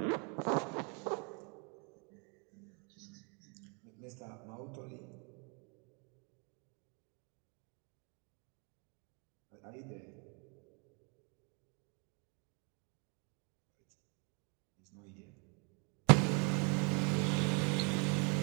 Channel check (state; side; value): quieter; left; 34.5 dB